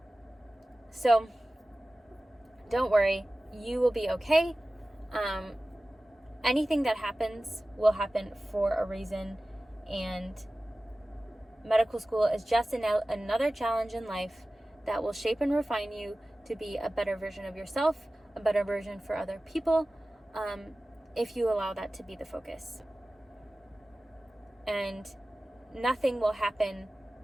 So don't worry, you will be okay. Anything that happens will happen for a reason, and medical school is just another challenge in life that will shape and refine you to be a better version of yourself, a better version for other people, if you allow that to be the focus. And nothing will happen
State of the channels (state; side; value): normal; both; correlation 0.96